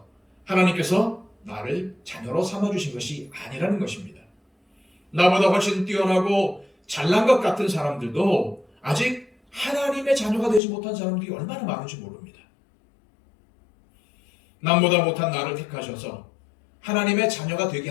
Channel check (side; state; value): right; drops out; at 10.6 s